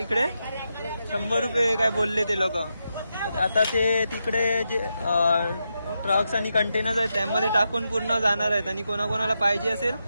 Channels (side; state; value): both; inverted; correlation -0.86